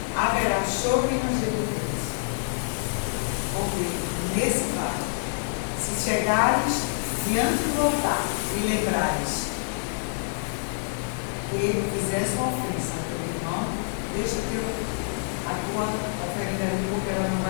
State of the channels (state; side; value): silent; right; digital silence